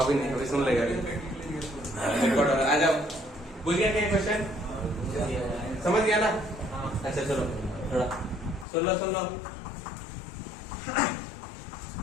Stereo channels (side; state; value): right; drops out; at 8.7 s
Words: नहीं, अभी सुन लेगा रिकॉर्ड। आ जाओ, बुझ गया क्या क्वेश्चन, समझ गया ना। अच्छा चलो थोड़ा सुन लो।